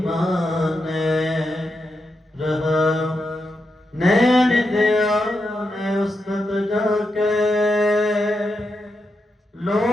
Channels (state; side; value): normal; both; correlation 0.86